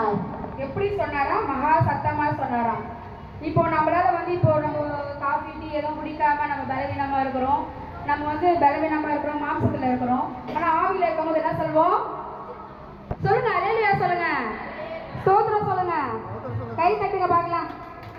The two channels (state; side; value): identical; both; correlation 1.00